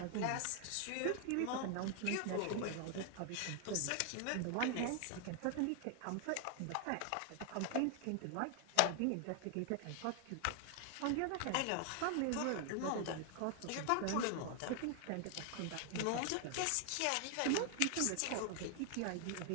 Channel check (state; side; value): different; both; correlation 0.00